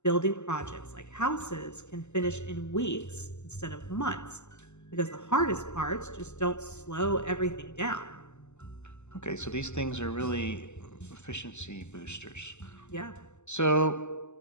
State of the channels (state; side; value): late; right; 0.83 ms